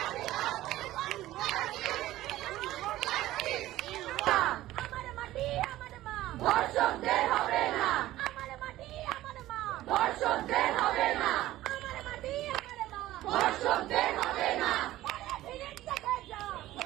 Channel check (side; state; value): left; quieter; 15.4 dB